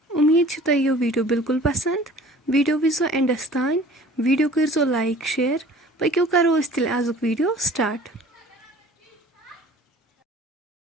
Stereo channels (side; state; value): both; normal; correlation 0.48